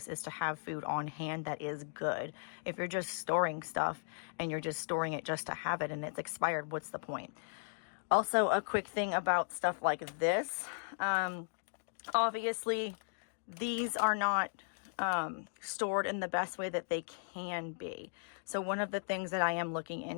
is to have food on hand that is good. If you're just storing stuff and you're just storing it just to have it and it's expired, what's the point? Also, a quick thing about stuff like this. Obviously, these are not stored in the best way that they can be. So one of the things that I am looking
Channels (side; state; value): right; silent; digital silence